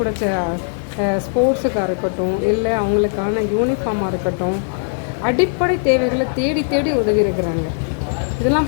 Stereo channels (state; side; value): silent; right; 63 dB below the other